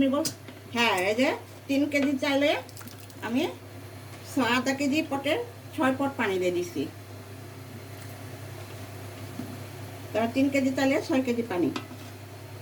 বল। হ্যাঁ, এই যে 3 কেজি চাইলে আমি আধা কেজি পটের 6 পট পানি দিয়ে দিছি। তারপর 3 কেজি চাইলে 6 কেজি পানি,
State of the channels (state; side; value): identical; both; correlation 1.00